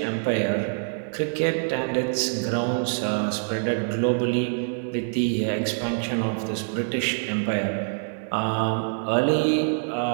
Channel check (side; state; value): left; silent; digital silence